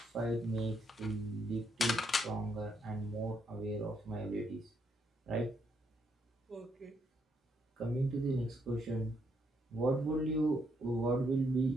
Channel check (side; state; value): both; normal; correlation 0.76